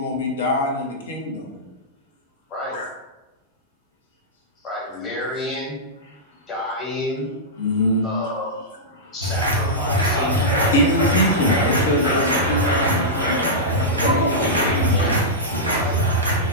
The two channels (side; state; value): both; normal; correlation -0.12